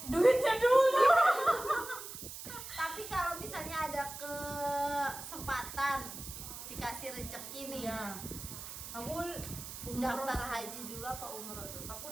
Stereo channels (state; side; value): noise; right; hiss, 10 dB below the sound